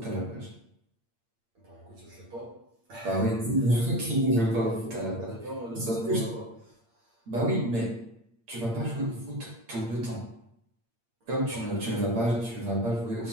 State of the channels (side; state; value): left; late; 8.7 ms